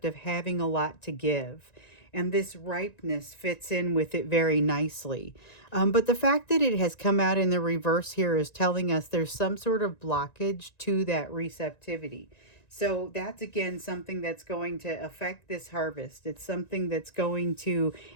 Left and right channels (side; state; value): right; late; 1.9 ms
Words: of having a lot to give. And this ripeness fits in with it very nicely. But the fact that it has come out in the reverse here is telling us there's some sort of blockage to that receptivity. So that's again something that's going to affect this harvest. It's something that's going to,